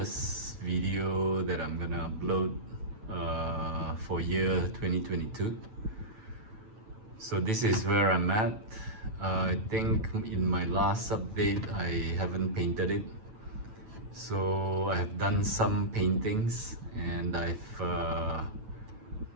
video that I'm gonna upload for year 2022. So this is where I'm at. I think in my last update I haven't painted it. So I have done some paintings, and I've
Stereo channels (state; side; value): late; left; 9.1 ms